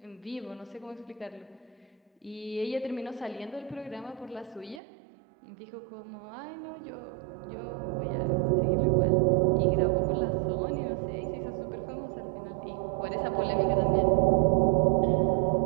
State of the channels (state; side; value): drops out; left; at 4.8 s